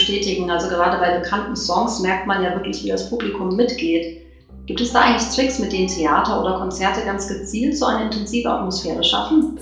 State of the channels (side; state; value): both; identical; correlation 1.00